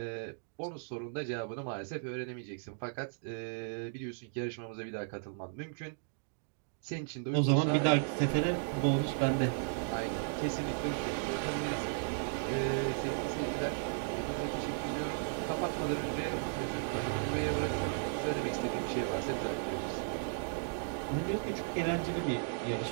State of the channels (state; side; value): silent; left; digital silence